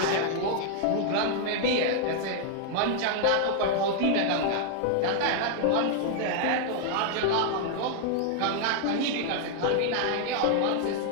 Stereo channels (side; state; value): both; different; correlation 0.00